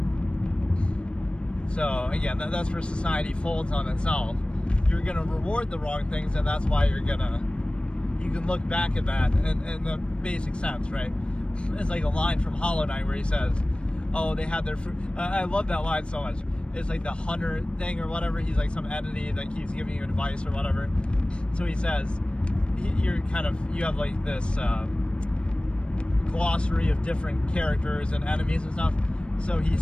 So again, that's where society folds on itself. You're gonna reward the wrong things, and that's why you can look back at that in the basic sense, right? It's like a line from Hollow Knight where he says, oh, they had their fruit. I love that line so much. It's like the hunter thing or whatever. He's like some entity that keeps giving you advice or whatever. So he says, you have like this glossary of different characters and enemies and stuff. So he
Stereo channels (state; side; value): late; right; 0.057 ms